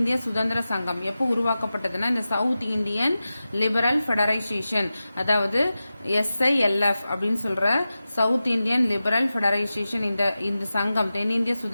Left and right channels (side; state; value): both; inverted; correlation -0.94